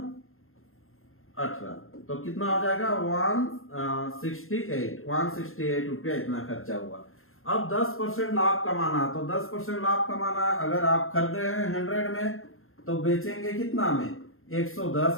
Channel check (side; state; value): right; late; 0.61 ms